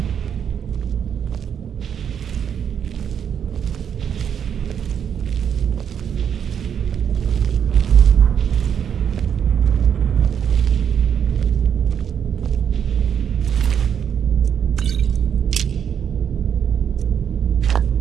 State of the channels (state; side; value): quieter; left; 8.1 dB